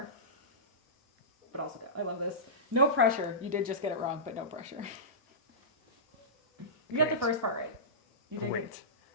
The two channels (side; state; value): both; normal; correlation -0.19